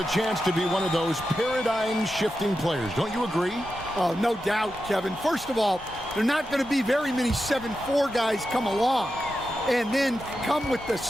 chance to be one of those paradigm-shifting players. Don't you agree? Oh, no doubt, Kevin. First of all, there are not going to be very many 7'4" guys come along. And then come with the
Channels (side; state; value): both; normal; correlation 0.90